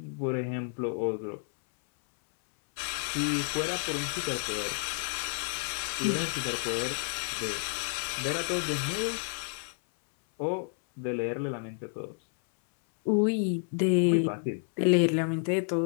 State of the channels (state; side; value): silent; right; 58 dB below the other